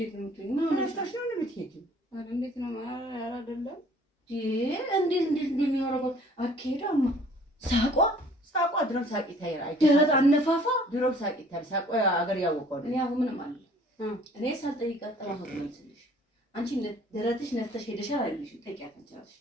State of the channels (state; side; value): normal; both; correlation 0.54